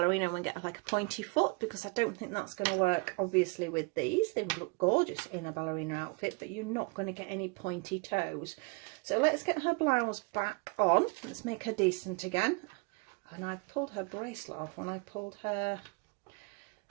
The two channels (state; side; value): quieter; left; 30.9 dB